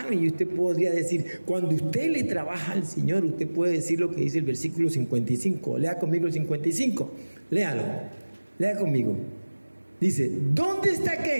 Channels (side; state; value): both; inverted; correlation -1.00